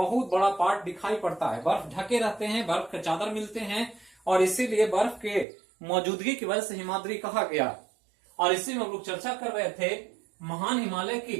बड़ा पार्ट दिखाई पड़ता है। बर्फ ढके रहते हैं, बर्फ के चादर मिलते हैं, और इसीलिए बर्फ के मौजूदगी की वजह से हिमाद्री कहा गया। और इसी में हम लोग चर्चा कर रहे थे महान हिमालय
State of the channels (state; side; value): drops out; left; at 5.5 s